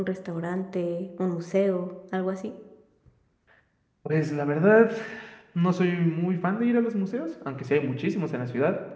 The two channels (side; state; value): both; identical; correlation 1.00